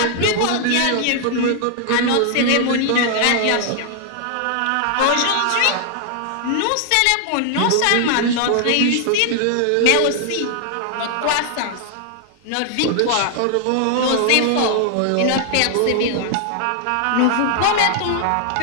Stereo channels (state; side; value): different; both; correlation 0.00